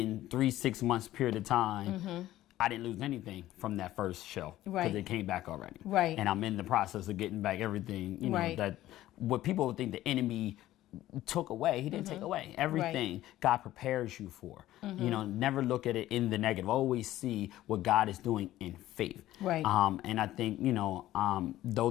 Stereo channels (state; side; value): quieter; right; 14.6 dB